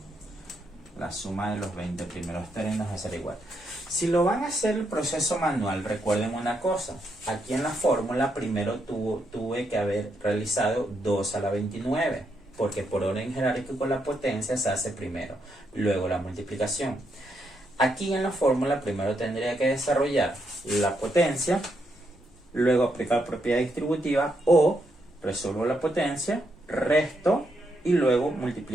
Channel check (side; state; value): both; normal; correlation 0.79